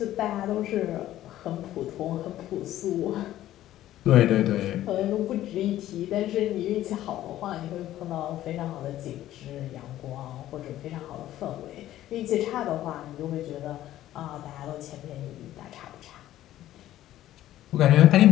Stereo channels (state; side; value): quieter; right; 13.6 dB